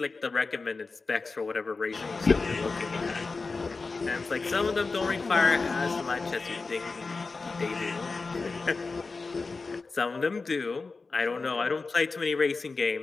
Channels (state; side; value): quieter; right; 4.1 dB